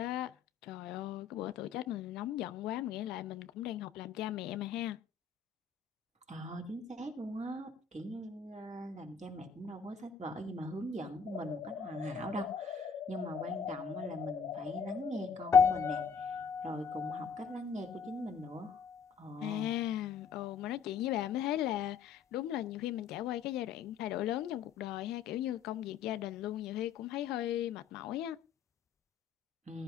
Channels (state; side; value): quieter; right; 6.5 dB